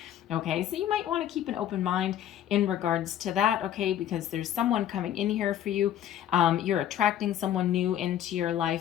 Okay, so you might want to keep an open mind in regards to that, okay, because there's someone coming in here for you. You're attracting someone new into your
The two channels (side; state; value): right; quieter; 11.0 dB